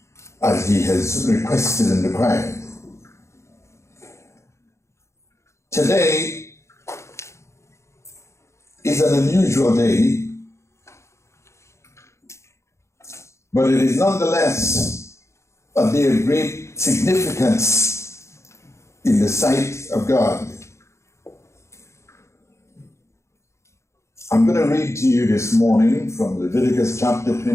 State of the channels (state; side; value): late; right; 0.14 ms